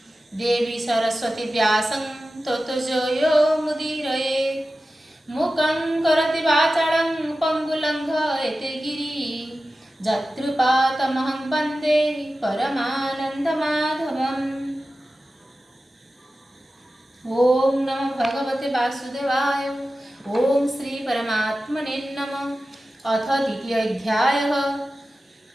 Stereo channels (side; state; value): both; normal; correlation 0.95